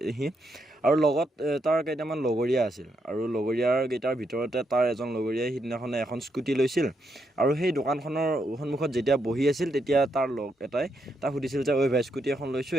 সি আৰু লগত তাৰ কেইটামান লগৰীয়া আছিল আৰু লগৰীয়াৰ কেইটাৰ ভিতৰতে তাৰ এজন লগৰীয়াই সিদিনাখনে এখন স্কুটি লৈছিল আৰু সেই দোকানখনৰ সন্মুখত যেতিয়া বহি আছিল তেতিয়া তাৰ লগ এটাই তাক সুধিছিল যে ঐ ভাই স্কুটি এখন লৈছোঁ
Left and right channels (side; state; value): both; normal; correlation 0.79